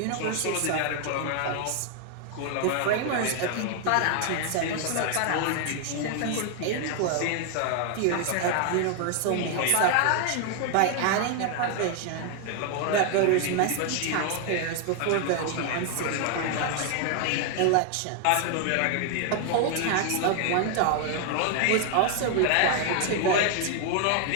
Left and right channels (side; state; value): both; different; correlation 0.00